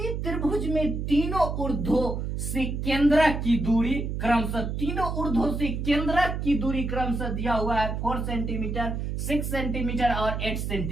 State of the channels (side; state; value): right; noise; hum, 3 dB below the sound